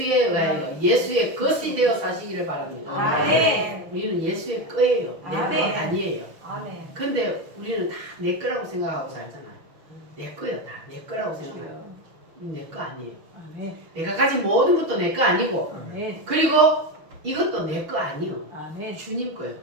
의하여 예수의 것이 되어 사시기를 바랍니다. 우리는 예수의 거예요. 내 거 아니에요. 근데 우리는 다 내 거라고 생각하고 살잖아요. 내 거야. 다 내 거라고 생각해요. 내 거 아니에요. 내가 가진 모든 것도 내 거 아니고 그리고 이것도 내 거 아니요. 주님 거예요.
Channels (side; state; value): left; late; 6.2 ms